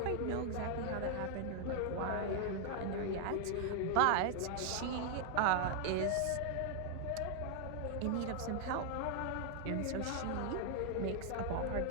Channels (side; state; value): both; different; correlation 0.00